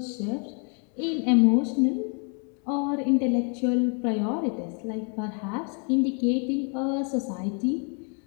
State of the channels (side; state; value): right; quieter; 39.4 dB